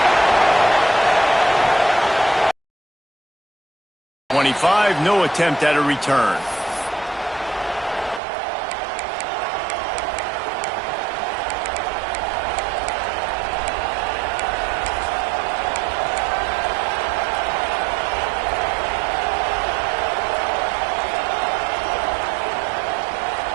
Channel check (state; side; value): drops out; left; at 8.2 s